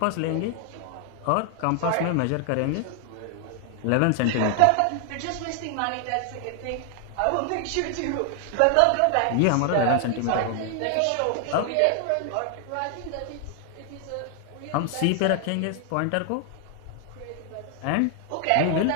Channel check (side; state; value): both; different; correlation 0.00